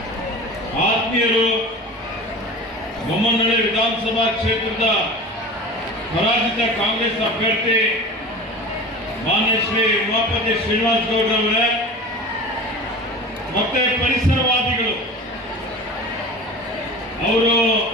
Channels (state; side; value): normal; both; correlation 0.35